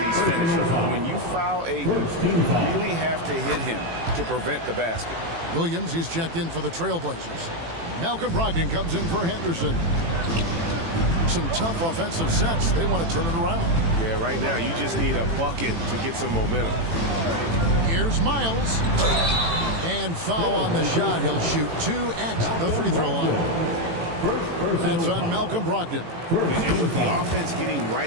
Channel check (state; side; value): late; left; 18 ms